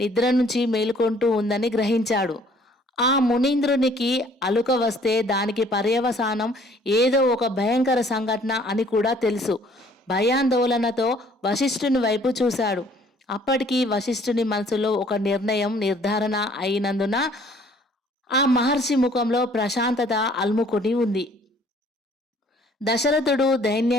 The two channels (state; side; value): normal; both; correlation 0.58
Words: నుంచి మేలుకొంటూ ఉందని గ్రహించాడు. ఆ మునీంద్రునికి అలుక వస్తే దానికి పర్యవసానం ఏదో ఒక భయంకర సంఘటన అని కూడా తెలుసు. భయాందోళనతో వశిష్ఠుని వైపు చూశాడు. అప్పటికి వశిష్ఠుని మనసులో ఒక నిర్ధారణ అయినందున ఆ మహర్షి ముఖంలో ప్రశాంతత అలుముకొని ఉంది. దశరథుడు